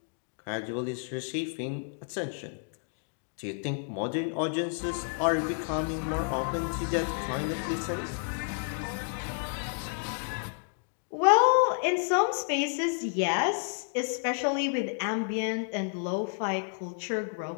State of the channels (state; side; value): silent; right; 57 dB below the other